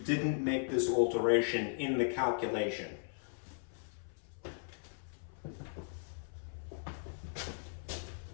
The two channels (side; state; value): right; silent; 53 dB below the other